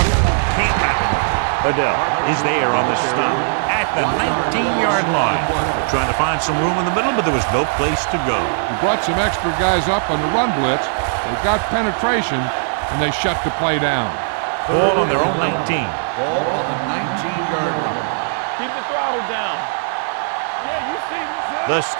Can't wrap it. Adele is there on the stop at the 19-yard line. Trying to find some room in the middle, but there was no place to go. He brought some extra guys up on the run blitz. They got penetration, and they shut the play down. Ball on their own 19. Ball on the 19-yard line. Keep the throttle down. Yeah, you see this. The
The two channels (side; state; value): left; silent; 67 dB below the other